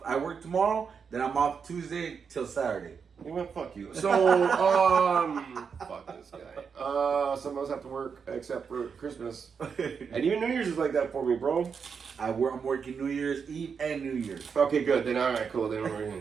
I work tomorrow, then I'm off Tuesday till Saturday. You went, fuck you. So, fuck this guy. Some of us have to work except for Christmas. And even New Year's is like that for me, bro. I'm working New Year's Eve and New Year's. Okay, good. Then all right, cool. Then we're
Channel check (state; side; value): quieter; left; 6.2 dB